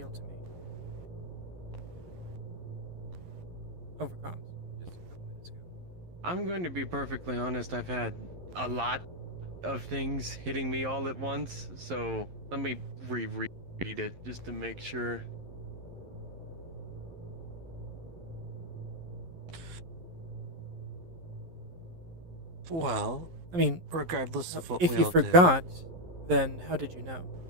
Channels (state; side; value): late; left; 11 ms